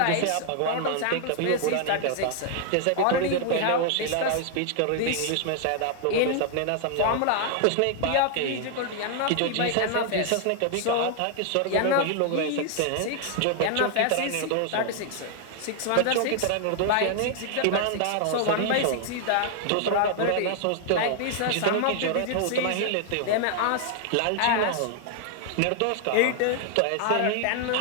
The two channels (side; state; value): both; different; correlation 0.00